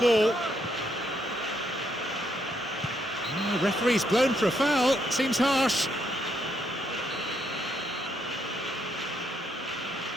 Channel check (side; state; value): both; normal; correlation 0.76